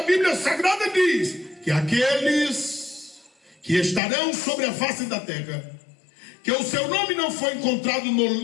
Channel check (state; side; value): drops out; right; at 4.0 s